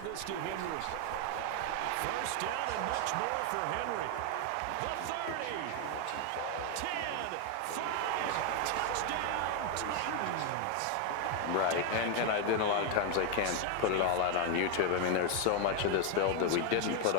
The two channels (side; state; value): both; different; correlation 0.01